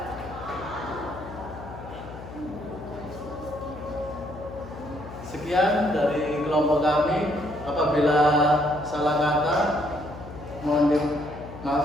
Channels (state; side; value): noise; left; hum, 14 dB below the sound